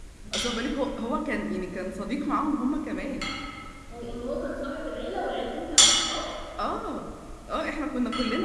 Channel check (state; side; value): identical; both; correlation 1.00